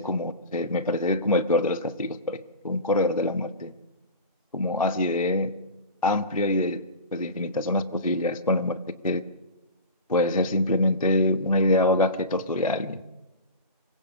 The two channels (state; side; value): inverted; both; correlation -0.30